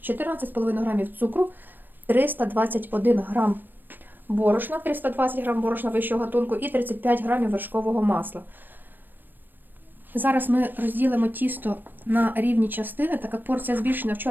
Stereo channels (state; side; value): late; left; 0.093 ms